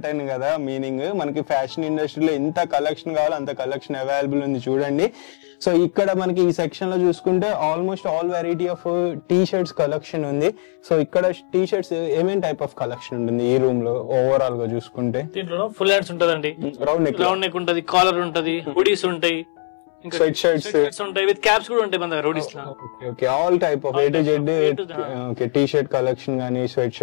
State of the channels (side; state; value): right; silent; 64 dB below the other